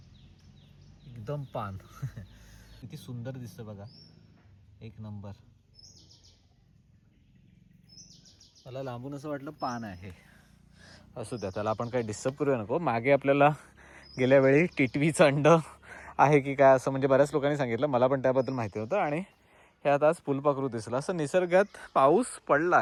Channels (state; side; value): identical; both; correlation 1.00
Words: एकदम पान किती सुंदर दिसतं बघा. एक नंबर. मला लांबून असं वाटलं पान आहे. असू द्या त्याला आपण काही डिस्टर्ब करूया नको. मागे आपल्याला गेल्या वेळी टिटवीचं अंड आहे की काय असं म्हणजे बऱ्याच लोकांनी सांगितलं. मला पण त्याबद्दल माहिती होतं. आणि ह्यात आज फुलपाखरू दिसलं. असं निसर्गात पाऊस